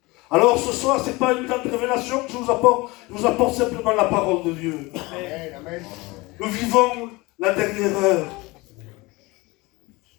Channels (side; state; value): right; quieter; 23.2 dB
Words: Alors ce soir, ce n'est pas une grande révélation que je vous apporte simplement la parole de Dieu. Amen. Nous vivons la dernière heure.